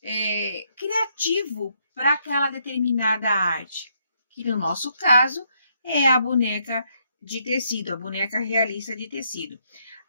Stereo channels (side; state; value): both; inverted; correlation -0.74